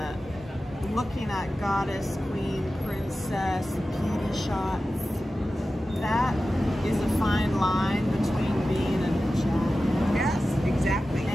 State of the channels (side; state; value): both; normal; correlation 0.94